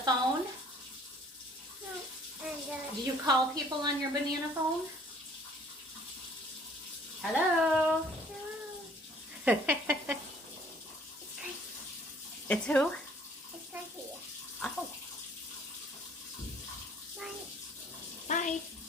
No, and Do you call people on your banana phone? Hello? It's who? it's right here. Oh. Bye. Bye.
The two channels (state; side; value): normal; both; correlation 0.56